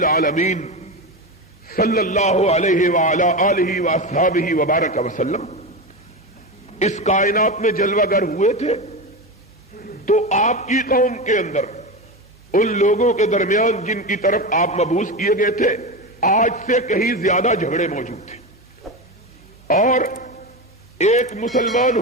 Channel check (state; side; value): normal; both; correlation 0.19